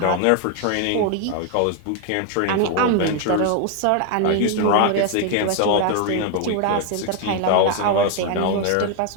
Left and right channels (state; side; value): different; both; correlation 0.00